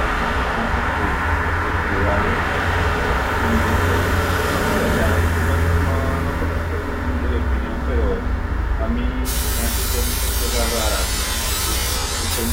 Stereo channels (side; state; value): both; identical; correlation 1.00